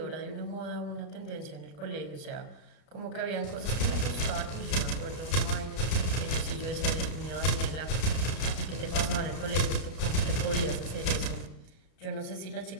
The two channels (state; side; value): late; right; 32 ms